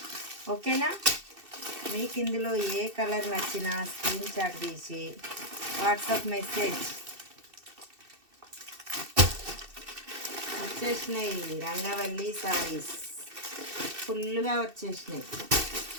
ఓకేనా, మీకు ఇందులో ఏ కలర్ నచ్చినా స్క్రీన్ షాట్ తీసి వాట్సాప్ మెసేజ్ వచ్చేసినాయి. రంగవల్లి సారీస్ ఫుల్గా వచ్చేసినాయి.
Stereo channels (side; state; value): left; late; 2.7 ms